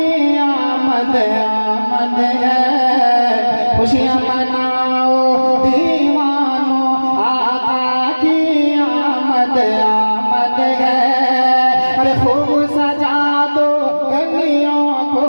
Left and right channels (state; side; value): inverted; both; correlation -1.00